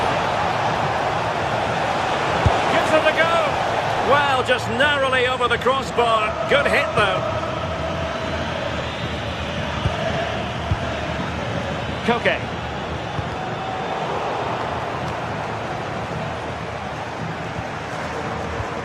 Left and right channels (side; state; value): both; identical; correlation 1.00